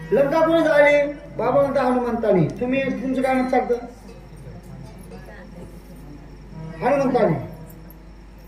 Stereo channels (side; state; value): both; identical; correlation 1.00